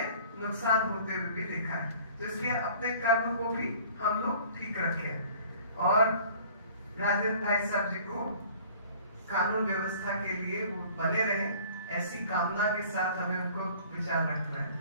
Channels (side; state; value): both; inverted; correlation -0.50